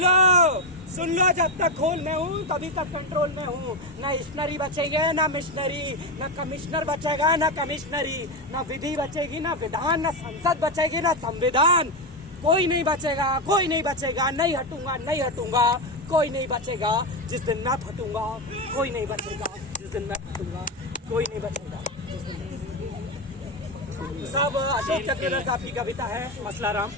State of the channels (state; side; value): normal; both; correlation 0.11